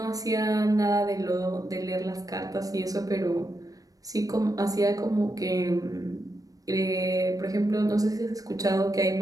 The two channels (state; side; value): late; left; 0.17 ms